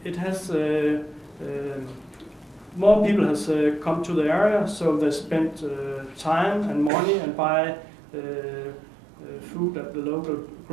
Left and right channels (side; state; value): left; drops out; at 6.9 s